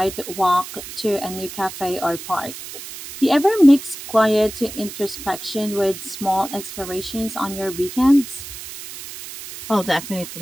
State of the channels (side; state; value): right; noise; hiss, 12 dB below the sound